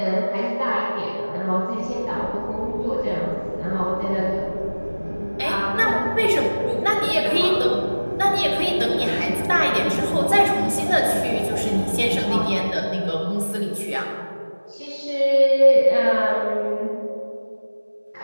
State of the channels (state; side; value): inverted; both; correlation -1.00